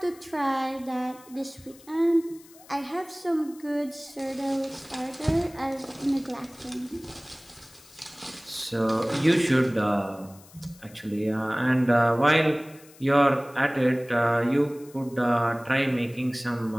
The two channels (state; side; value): noise; left; hiss, 24 dB below the sound